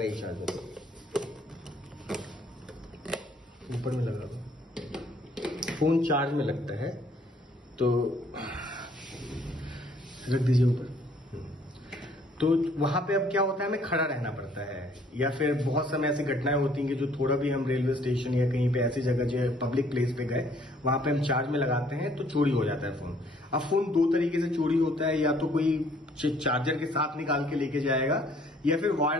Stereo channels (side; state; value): both; normal; correlation 0.62